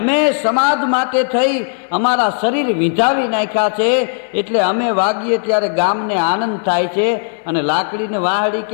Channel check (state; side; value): silent; right; 69 dB below the other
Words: સમાજ માટે થઈ અમારા શરીર વિંધાવી નાખ્યા છે, એટલે અમે વાગીએ ત્યારે ગામને આનંદ થાય છે. અને લાકડીને વાંસળી